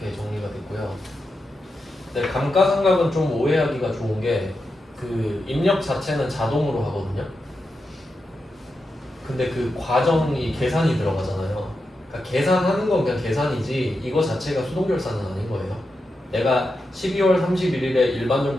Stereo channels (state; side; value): normal; both; correlation 0.88